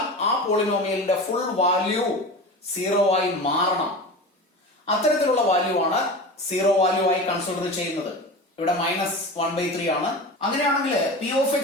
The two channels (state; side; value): normal; both; correlation 0.31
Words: ആ പോളിനോമിയലിന്റെ ഫുൾ വാല്യൂ സീറോ ആയി മാറണം. അത്തരത്തിലുള്ള വാല്യൂ ആണ് സീറോ വാല്യൂ ആയി കൺസിഡർ ചെയ്യുന്നത്. ഇവിടെ -1/3 ആണ്. അങ്ങനെയാണെങ്കിൽ പി ഓഫ്